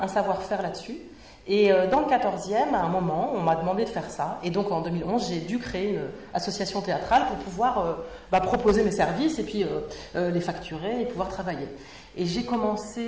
savoir-faire là-dessus. Et dans le 14e, à un moment, on m'a demandé de faire ça. Et donc en 2011, j'ai dû créer une association théâtrale pour pouvoir proposer mes services et puis les facturer et pouvoir travailler. Et j'ai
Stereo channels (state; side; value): identical; both; correlation 1.00